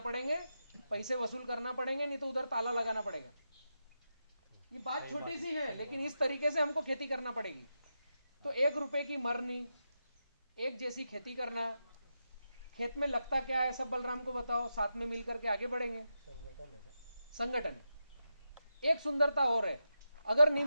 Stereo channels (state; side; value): inverted; both; correlation -0.88